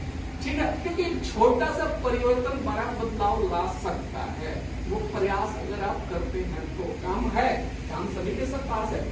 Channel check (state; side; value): identical; both; correlation 1.00